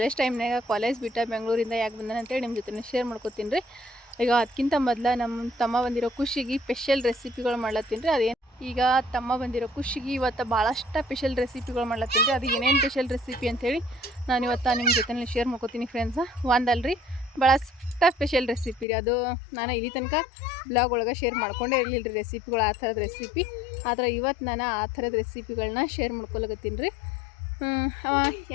ಟೈಮ್ನಾಗ, ಕಾಲೇಜ್ ಬಿಟ್ಟ ಬೆಂಗಳೂರಿಂದ ಯಾಕೆ ಬಂದಾನ ಅಂತೇಳಿ ನಿಮ್ಮ ಜೊತೆ ಶೇರ್ ಮಾಡ್ಕೊತೀನಿ ರೀ. ಈಗ ಅದಕ್ಕಿಂತ ಮೊದಲು ನಮ್ಮ ತಮ್ಮ ಬಂದಿರೋ ಖುಷಿಗೆ ಸ್ಪೆಷಲ್ ರೆಸಿಪಿಗಳು ಮಾಡ್ಲತ್ತೀನಿ ರೀ. ಅದೇನು ಈಗ ತಮ್ಮ ಬಂದಿರೋ ಖುಷಿಗೆ ಇವತ್ತು ಭಾಳಷ್ಟು ಸ್ಪೆಷಲ್ ರೆಸಿಪಿಗಳು ಮಾಡ್ಲತ್ತೀನಿ ರೀ. ಅದು ಏನೇನು ಸ್ಪೆಷಲ್ ರೆಸಿಪಿ ಅಂಥೇಳಿ ನಾನು ಇವತ್ತು ನಿಮ್ಮ ಜೊತೆ ಶೇರ್ ಮಾಡ್ಕೊತೀನಿ ಫ್ರೆಂಡ್ಸ. ಒಂದಲ್ರಿ, ಭಾಳಷ್ಟು ಸ್ಪೆಷಲ್ ರೆಸಿಪಿ ರೀ. ಅದು ನಾನು ಇಲ್ಲಿ ತನಕ ಬ್ಲಾಗ್ ಒಳಗೆ ಶೇರ್ ಮಾಡ್ಕೊಂಡೇ ಇರಲಿಲ್ಲ ರೀ ರೆಸಿಪಿಗಳು, ಆ ಥರದ ರೆಸಿಪಿ. ಆದರೆ ಇವತ್ತು ನಾನು ಆ ಥರದ ರೆಸಿಪಿಗಳನ್ನ ಶೇರ್ ಮಾಡ್ಕೊಳಕತ್ತೀನಿ ರೀ.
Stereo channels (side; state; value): right; drops out; at 18.9 s